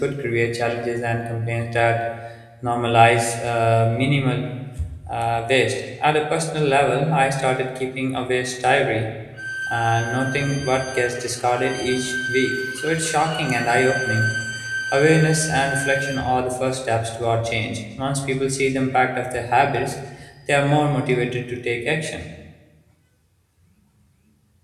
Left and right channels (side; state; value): both; identical; correlation 1.00